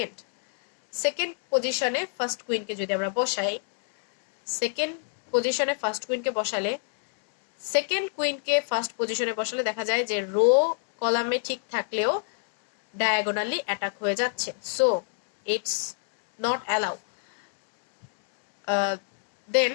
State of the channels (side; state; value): right; silent; digital silence